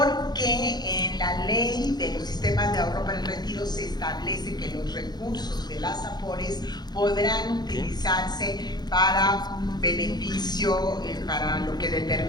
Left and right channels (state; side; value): late; right; 0.20 ms